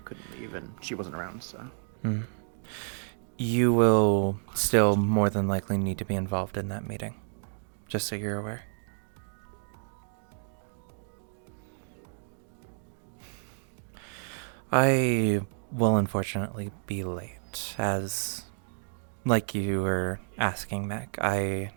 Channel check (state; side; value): silent; left; digital silence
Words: couldn't leave and she wasn't around, so. You will still more than likely need to be involved in that meeting, just so you're aware. I will unfortunately be late, as, like you were asking, Mac, I